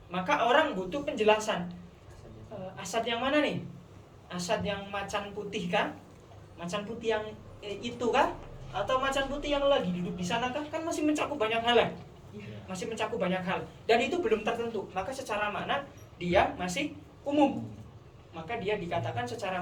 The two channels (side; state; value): both; identical; correlation 1.00